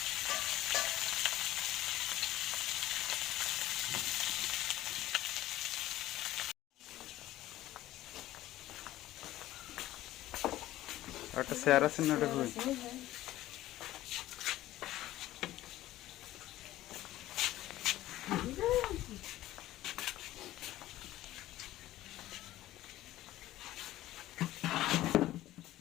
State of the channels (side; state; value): right; quieter; 15.1 dB